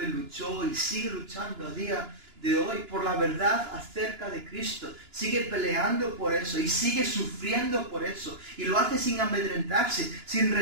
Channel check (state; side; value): late; left; 2.9 ms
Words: luchó y sigue luchando a día de hoy por la verdad acerca de Cristo. Sigue peleando por eso y sigue sufriendo por eso. Y lo hace sin amedrentarse, sin